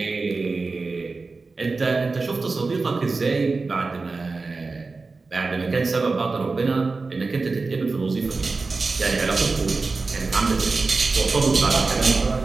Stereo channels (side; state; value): left; quieter; 3.9 dB